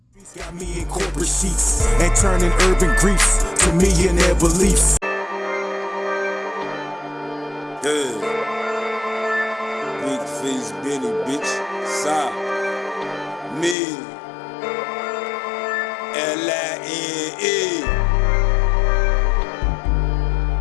Got me in corporate seats and turning urban griefs to millionaire beliefs. Yeah. Big face Benny, bitch. Side. Me. L-I-N-E.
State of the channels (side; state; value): right; drops out; at 13.8 s